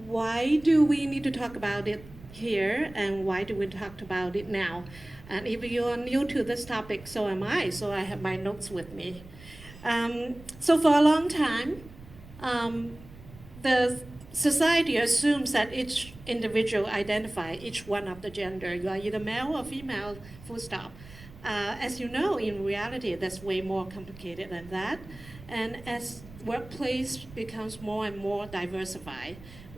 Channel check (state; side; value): noise; right; rumble, 19 dB below the sound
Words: Why do we need to talk about it here, and why do we talk about it now? And if you are new to this topic, so am I, so I have my notes with me. So for a long time, the society assumes that each individual identify each one of the gender. You are either male or female, full stop. As you know, in reality, that's way more complicated than that. And as workplace becomes more and more diversified,